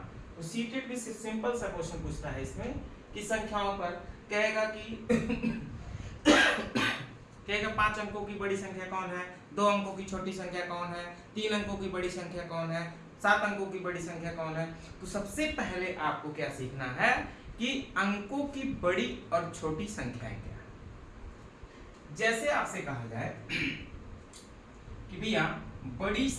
तो सीटेट भी सिंपल सा क्वेश्चन पूछता है इसमें कि संख्याओं पर कहेगा कि कहेगा 5 अंकों की बड़ी संख्या कौन है, 2 अंकों की छोटी संख्या कौन है, 3 अंकों की बड़ी संख्या कौन है, 7 अंकों की बड़ी संख्या कौन है। तो सबसे पहले आपको क्या सीखना है कि अंकों की बड़ी और छोटी संख्याएं क्या है। जैसे आपसे कहा जाए कि भैया बड़ी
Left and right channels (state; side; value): identical; both; correlation 1.00